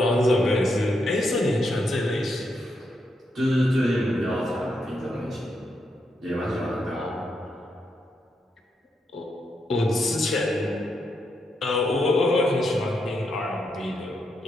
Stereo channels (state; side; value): normal; both; correlation 0.81